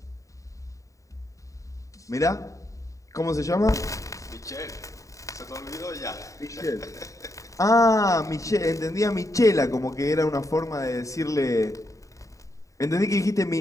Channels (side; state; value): right; late; 0.16 ms